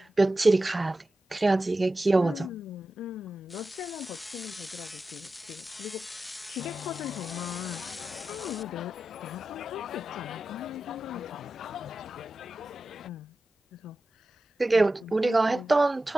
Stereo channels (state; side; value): normal; both; correlation 0.93